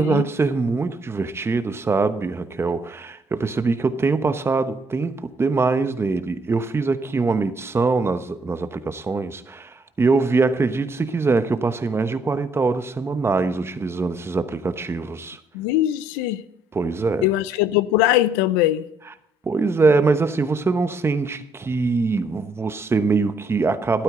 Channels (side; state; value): both; normal; correlation 0.68